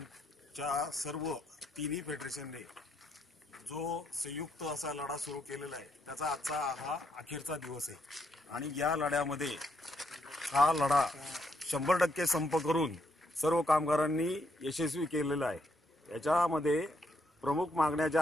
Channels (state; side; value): normal; both; correlation 0.75